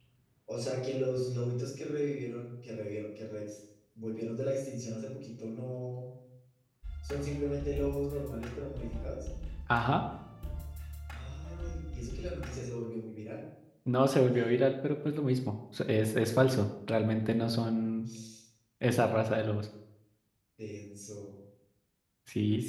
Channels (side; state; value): both; identical; correlation 1.00